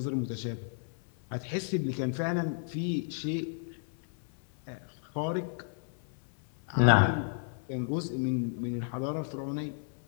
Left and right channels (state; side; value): silent; right; 56 dB below the other